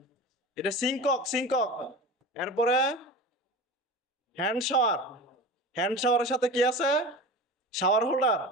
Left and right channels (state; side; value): normal; both; correlation 0.31